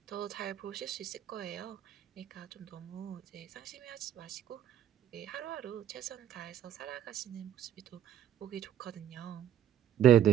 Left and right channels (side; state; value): left; quieter; 10.4 dB